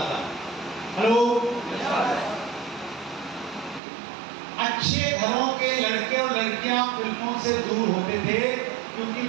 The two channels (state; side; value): drops out; left; at 3.8 s